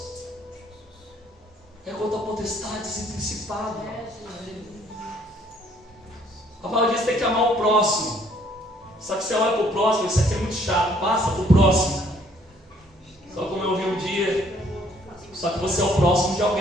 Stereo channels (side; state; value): both; normal; correlation 0.63